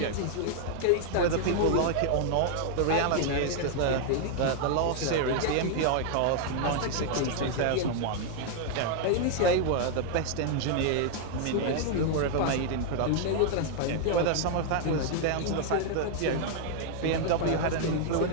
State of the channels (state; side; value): different; both; correlation 0.00